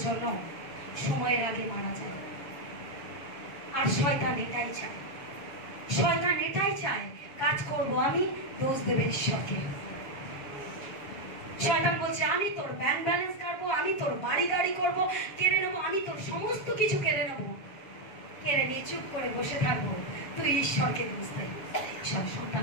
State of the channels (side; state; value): right; late; 7.4 ms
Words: জন্য সময়ের আগে মারা যায়। আর শয়তান এটাই চায়, শয়তান এটাই চায়, কাজ করব আমি, দোষ দেবে ঈশ্বরকে। শয়তান বলছে আমি তোর ব্যাংক ব্যালেন্স কাটবো, আমি তোর বাড়ি গাড়ি করবো, কেড়ে নেবো, আমি তোর সমস্ত কিছু কেড়ে নেবো। কেড়ে নিয়ে চুপ করে বসে থাকবো, তুই ঈশ্বরকে দোষ দে। ঈশ্বর